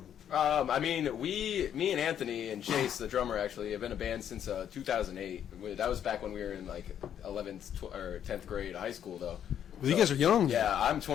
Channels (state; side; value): quieter; right; 9.5 dB